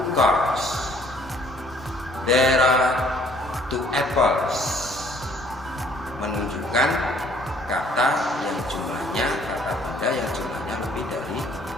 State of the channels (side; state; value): both; normal; correlation 0.59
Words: cars. There are two apples menunjukkan kata yang jumlahnya, kata benda yang jumlahnya lebih dari